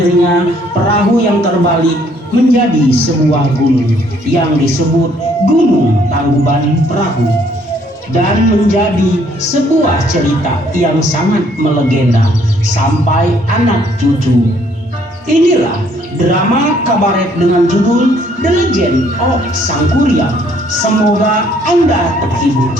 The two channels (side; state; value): both; normal; correlation 0.64